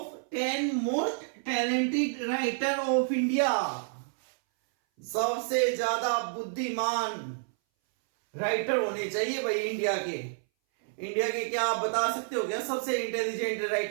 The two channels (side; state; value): left; silent; 58 dB below the other